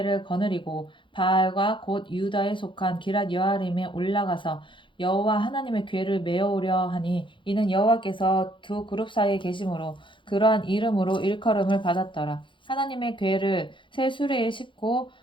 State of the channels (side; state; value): right; late; 0.24 ms